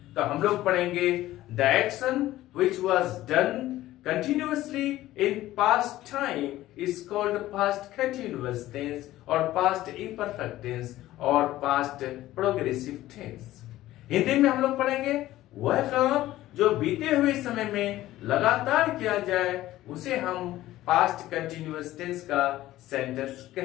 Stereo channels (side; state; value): right; quieter; 15.3 dB